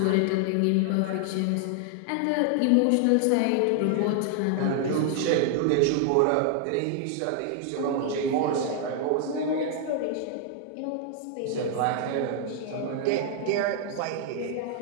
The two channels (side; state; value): both; different; correlation 0.00